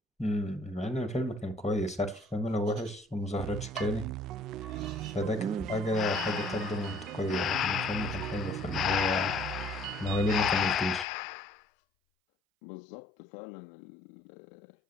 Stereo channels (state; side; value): drops out; right; at 11.1 s